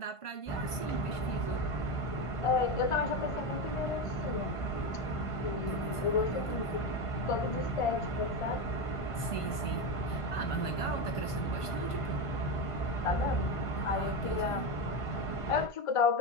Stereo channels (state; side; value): late; right; 1.5 ms